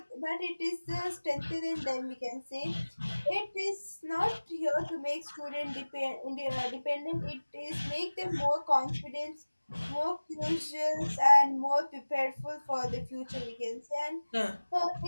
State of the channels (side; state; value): both; inverted; correlation -1.00